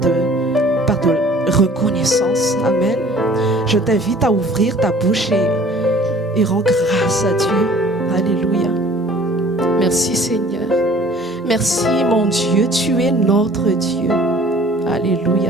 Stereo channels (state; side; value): normal; both; correlation 0.51